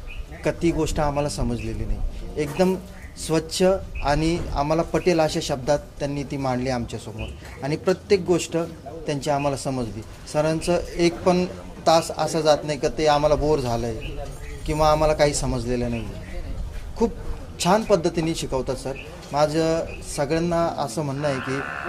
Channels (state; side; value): identical; both; correlation 1.00